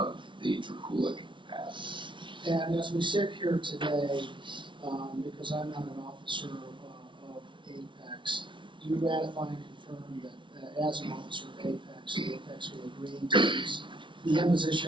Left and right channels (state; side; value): late; left; 0.24 ms